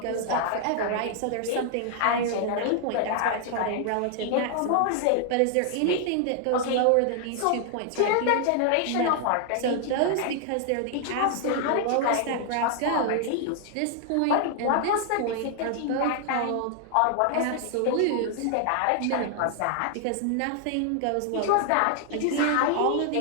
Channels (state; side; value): different; both; correlation 0.00